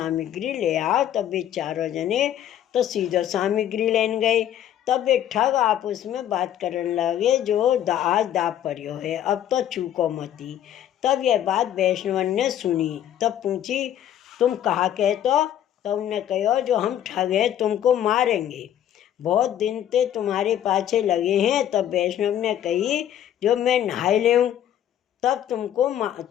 ले आओ। तब वे 4 जने तो सीधो सामग्री लेन गए। तब वे ठग आपस में बात करने लगे, जो आज दाप पर्यो है, अब तो चूको मती। तब यह बात वैष्णवन ने सुनी। तब पूछी, तुम कहा कहतो? तो उनने कहो, जो हम ठग हैं, तुमको मारेंगे, बहुत दिन ते तुम्हारे पाछे लगे हैं। तब वैष्णव ने कही, जो मैं नहाय लेऊँ तब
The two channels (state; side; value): quieter; right; 10.9 dB